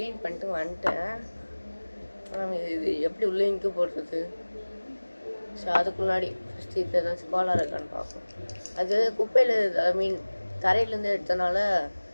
பண்ணிட்டு வந்துட்டேன். இது எப்படி உள்ளே இங்கு போடுறது? ஸோ அதுக்கு முன்னாடி ஃபஸ்ட்டு இப்போ ஏதாச்சும் கோளாறு இருக்கான்னு பார்ப்போம். அது குப்பையில், ஐ மீன் தரையிலேருந்து எடுத்தனால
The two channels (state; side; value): inverted; both; correlation -1.00